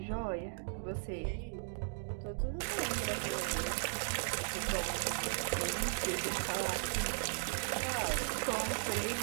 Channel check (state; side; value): silent; left; digital silence